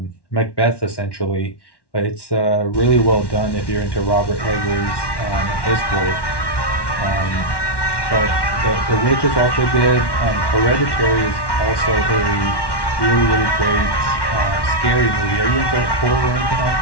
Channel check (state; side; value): late; right; 1.1 ms